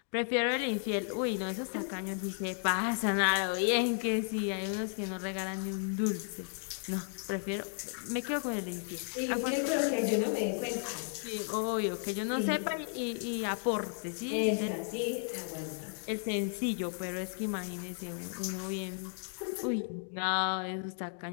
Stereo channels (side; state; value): right; silent; 55 dB below the other